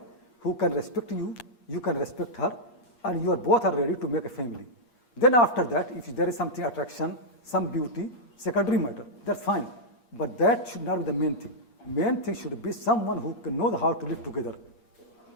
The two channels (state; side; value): late; right; 8.4 ms